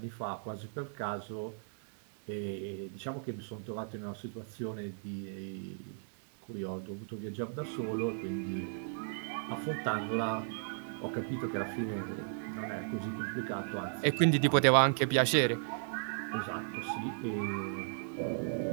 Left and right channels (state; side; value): silent; left; digital silence